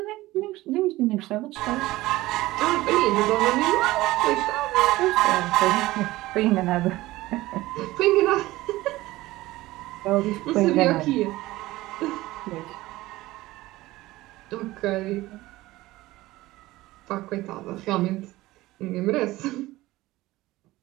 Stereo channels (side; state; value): left; quieter; 18.0 dB